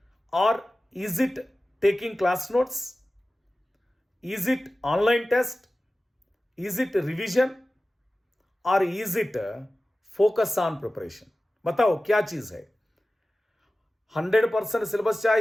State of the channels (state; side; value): normal; both; correlation 0.96